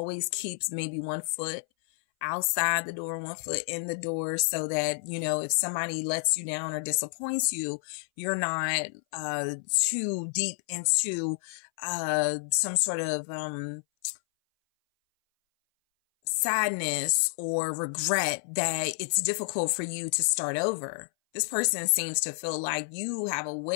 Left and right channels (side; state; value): right; silent; 58 dB below the other